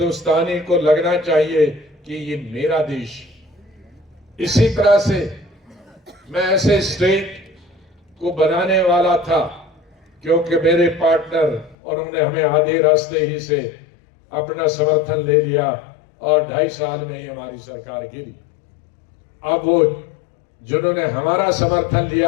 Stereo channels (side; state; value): right; drops out; at 11.8 s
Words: को लगना चाहिए कि ये मेरा देश। इसी तरह से मैं ऐसे स्टेट को बनाने वाला था, क्योंकि मेरे पार्टनर उन्होंने हमें आधे रास्ते ही से अपना समर्थन ले लिया और 2.5 साल में ही हमारी सरकार गिरी। अब वो जिन्होंने हमारा समर्थन